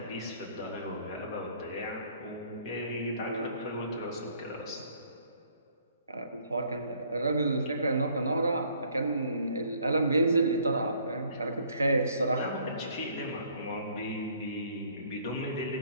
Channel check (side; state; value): both; inverted; correlation -0.61